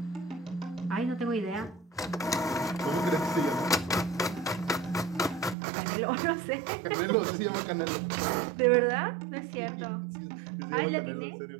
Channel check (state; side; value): drops out; left; at 5.6 s